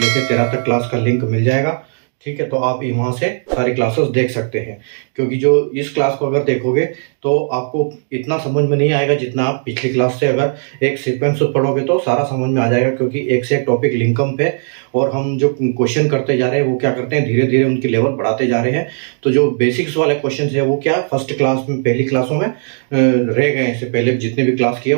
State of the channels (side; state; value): left; silent; digital silence